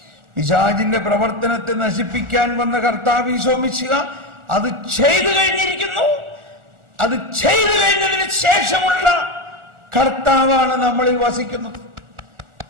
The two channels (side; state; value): left; late; 1.4 ms